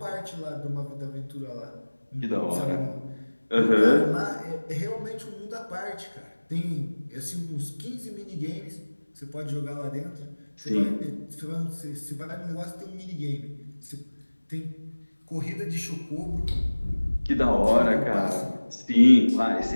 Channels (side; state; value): both; inverted; correlation -1.00